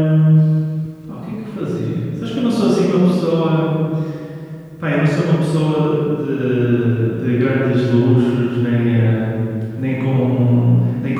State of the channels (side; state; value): both; identical; correlation 1.00